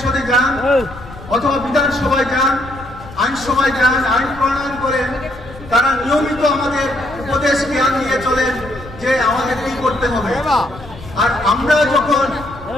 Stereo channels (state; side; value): noise; left; rumble, 17 dB below the sound